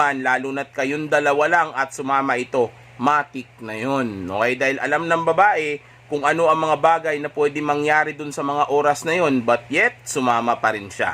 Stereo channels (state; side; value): identical; both; correlation 1.00